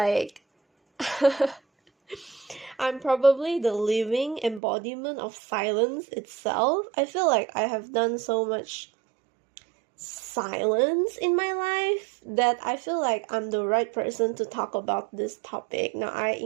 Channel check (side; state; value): left; drops out; at 4.6 s